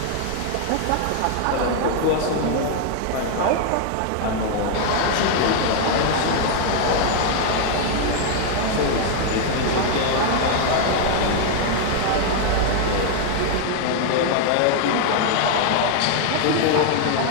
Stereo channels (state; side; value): different; both; correlation 0.00